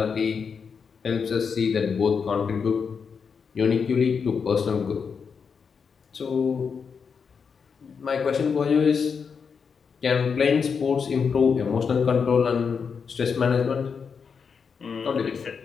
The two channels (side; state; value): right; quieter; 6.0 dB